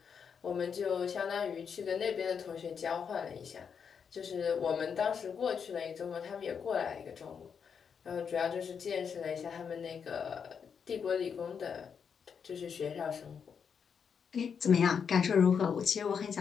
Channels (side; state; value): right; quieter; 6.8 dB